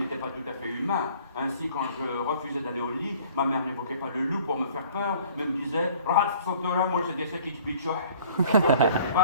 pas tout à fait humain. Ainsi, quand je refusais d'aller au lit, ma mère n'évoquait pas le loup pour me faire peur, mais me disait « Ralph Sotora, moi je disais qu'il bitchoh.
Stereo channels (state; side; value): inverted; both; correlation -0.52